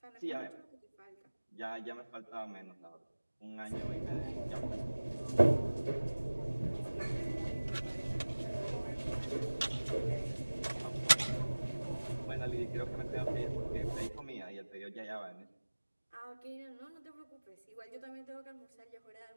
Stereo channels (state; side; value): inverted; both; correlation -1.00